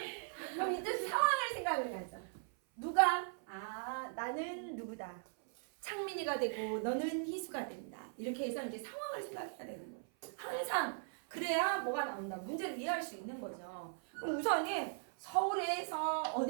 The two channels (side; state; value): left; silent; 52 dB below the other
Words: 그럼 이제 상황을 생각을 하자. 누가? 나는 누구다. 창민이가 되고 너는 희수가 된다. 이렇게 해서 이제 상황을 생각해야 되는 거예요. 항상 그래야 뭐가 나온다. 문제를 이해할 수 있는 거죠. 그럼 우선은 서울에서